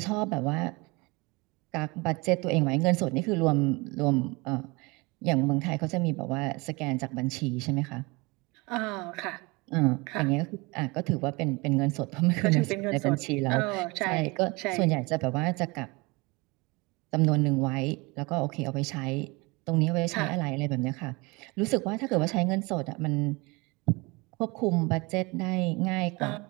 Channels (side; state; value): left; quieter; 25.8 dB